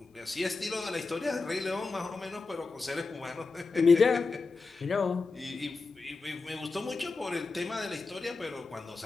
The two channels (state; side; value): quieter; right; 4.1 dB